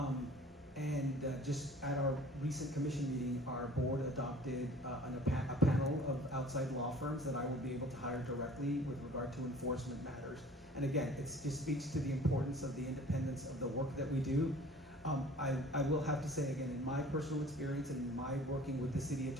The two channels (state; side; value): normal; both; correlation 0.48